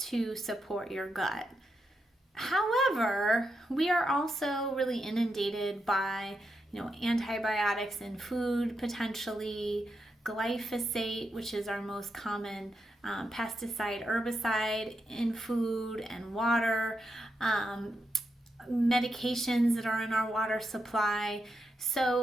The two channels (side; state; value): both; normal; correlation 0.84